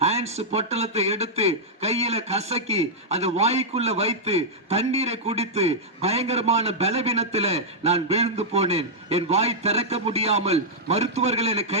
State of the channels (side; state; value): both; normal; correlation -0.06